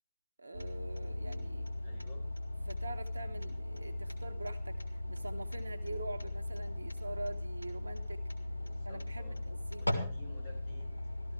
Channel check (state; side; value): inverted; both; correlation -0.95